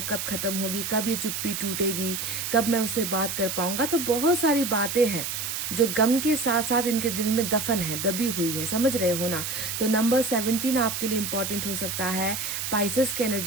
कब ख़त्म होगी, कब ये चुप्पी टूटेगी, कब मैं उससे बात कर पाऊँगा। तो बहुत सारी बातें हैं जो गम के साथ साथ इनके दिल में दफन है, दबी हुई है, समझ रहे हो ना। तो नंबर 17 आपके लिए इम्पॉर्टेंट हो सकता है। पाइसेस की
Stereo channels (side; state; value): right; noise; hiss, 4 dB below the sound